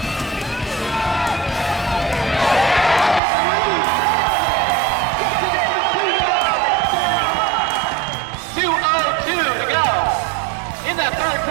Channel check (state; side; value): drops out; left; at 3.2 s